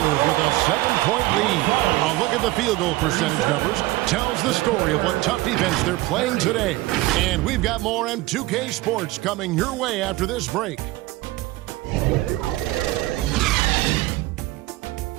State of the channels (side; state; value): left; quieter; 19.0 dB